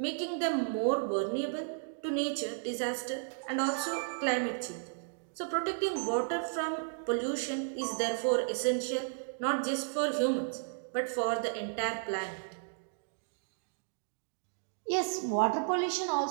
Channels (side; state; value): left; silent; digital silence